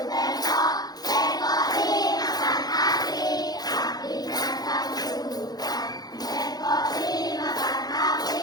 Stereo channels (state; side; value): late; right; 0.19 ms